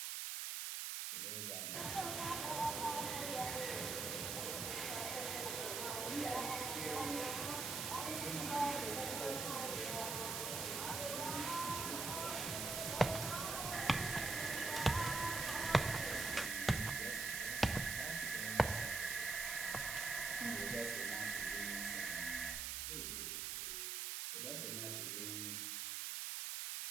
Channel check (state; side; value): noise; right; hiss, 2 dB below the sound